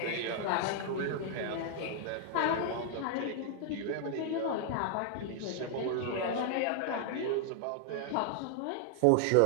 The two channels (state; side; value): different; both; correlation 0.00